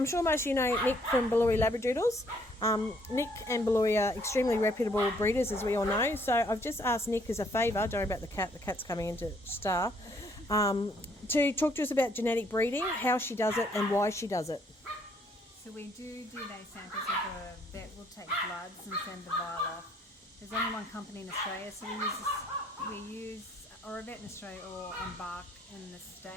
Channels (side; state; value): both; normal; correlation 0.66